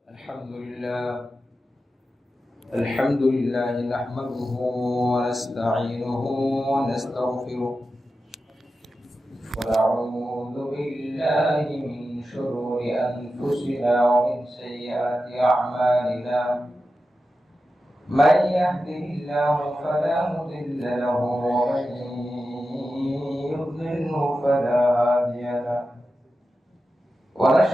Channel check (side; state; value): both; normal; correlation 0.92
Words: الحمد لله نحمده ونستعينه ونستغفره ونعوذ بالله من شرور أنفسنا ومن سيئات أعمالنا من يهده الله فلا مضل له ومن يضلله فلا هادي له